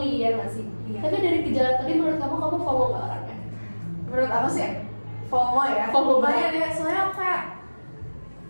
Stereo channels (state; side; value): inverted; both; correlation -1.00